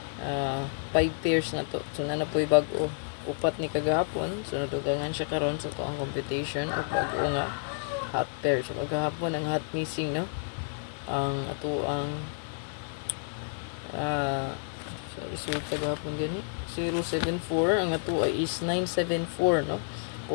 5 pairs na to. So na po'y bag-o upat ni kagahapon. So natugangan siya karon sa to ang competition o bag-o nga hot pair. So kagahapon ang hot missing no. Ang ato ang so resulta gahapon gani 074, ang ato ay is 974 no.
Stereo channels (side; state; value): right; silent; 58 dB below the other